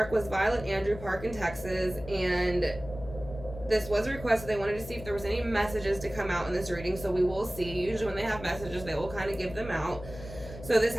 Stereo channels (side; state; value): left; noise; hum, 13 dB below the sound